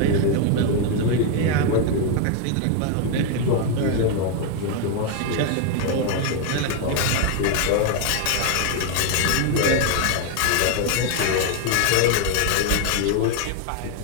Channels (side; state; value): both; different; correlation 0.01